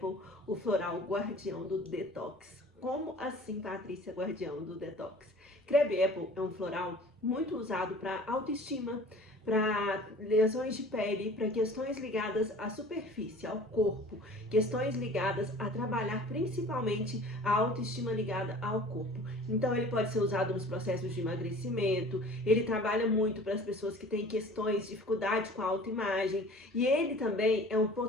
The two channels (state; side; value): normal; both; correlation 0.45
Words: o floral guardião do detox. Como assim, Patrícia, guardião do detox? Crabbe Apple é um floral muito usado para autoestima, para lesões de pele, para questões ligadas à superfície, ao corpo, questões ligadas a trabalhar principalmente a autoestima ligada ao corpo. Então ele pode ser usado nos processos de emagrecimento, ele trabalha muito para as pessoas que têm questões, dificuldade com a autoimagem, e ele também é um